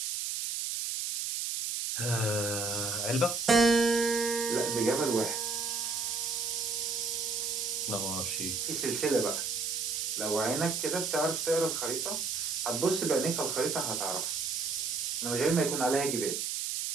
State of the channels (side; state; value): right; noise; hiss, 1 dB below the sound